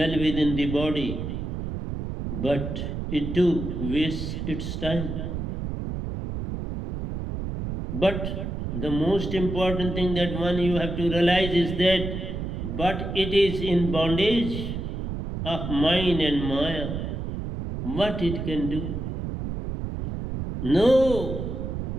within the body, but it too wastes its time. But the most important thing that one you have to realize is that but it is in bondage of mind and maya. What it can do? No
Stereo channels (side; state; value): right; noise; rumble, 5 dB below the sound